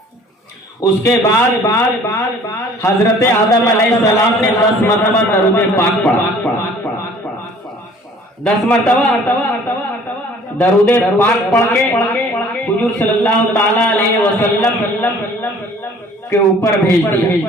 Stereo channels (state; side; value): normal; both; correlation 0.53